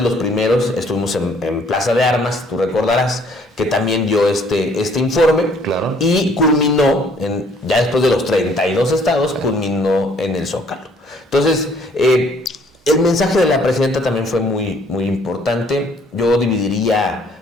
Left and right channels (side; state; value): both; normal; correlation 0.61